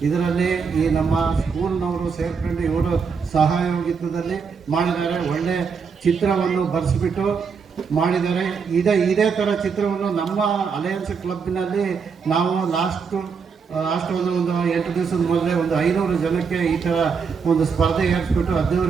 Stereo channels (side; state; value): left; quieter; 5.8 dB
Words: ಇದರಲ್ಲಿ ಈ ನಮ್ಮ ಸ್ಕೂಲ್ನವರು ಸೇರ್ಕೊಂಡು ಇವರು ಸಹಯೋಗಿತ್ವದಲ್ಲಿ ಮಾಡಿದ್ದಾರೆ. ಒಳ್ಳೆ ಚಿತ್ರವನ್ನು ಬರೆಸಿಬಿಟ್ಟು ಮಾಡಿದ್ದಾರೆ. ಇದೇ ಥರ ಚಿತ್ರವನ್ನು ನಮ್ಮ ಅಲಯನ್ಸ್ ಕ್ಲಬ್ನಲ್ಲಿ ನಾವು ಲಾಸ್ಟ್ ಒಂದು 8 ದಿವಸದ ಮೊದಲೇ ಒಂದು 500 ಜನಕ್ಕೆ ಈ ಥರ ಒಂದು ಸ್ಪರ್ಧೆ ಏರಿಸ್ಬಿಟ್ಟು